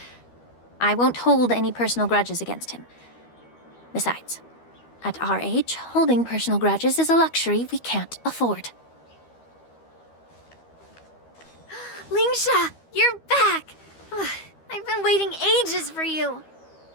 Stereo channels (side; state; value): right; late; 13 ms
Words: I won't hold any personal grudges against him. Besides, at our age, holding personal grudges is a luxury we can't afford. Lingsha, you're back! Ugh, I've been waiting ages for you.